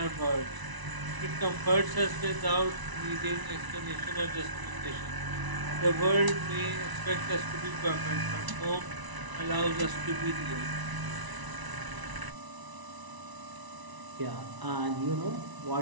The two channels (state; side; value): late; left; 1.0 ms